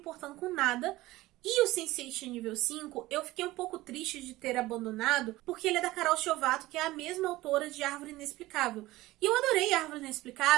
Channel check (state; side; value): quieter; left; 18.0 dB